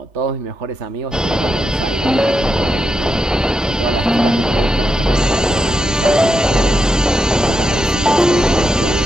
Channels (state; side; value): normal; both; correlation 0.85